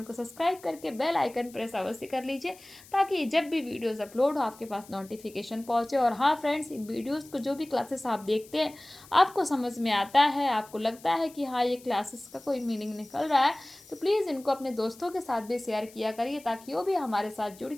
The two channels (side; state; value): left; noise; hiss, 22 dB below the sound